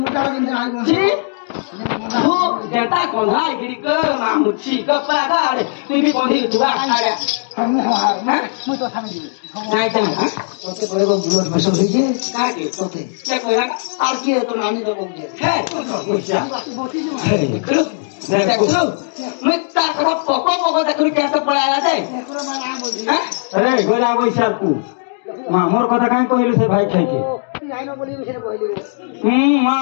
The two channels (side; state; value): right; silent; digital silence